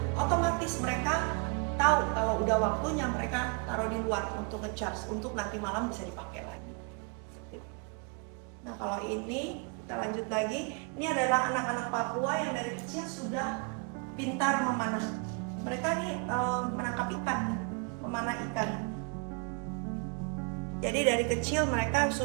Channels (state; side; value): quieter; left; 34.0 dB